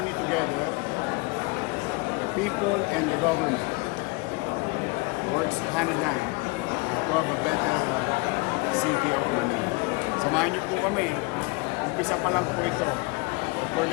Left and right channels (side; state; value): right; quieter; 26.5 dB